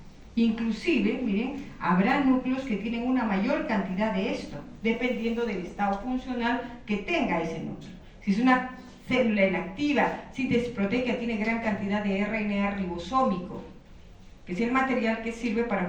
Inclusive, miren, habrá núcleos que tienen una mayor cantidad de esto, dependiendo del estado funcional que tenga ese núcleo. Si es una célula inactiva, síntesis proteica, tiene gran cantidad de RNA ribosómico, que es el material que sirve para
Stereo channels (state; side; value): identical; both; correlation 1.00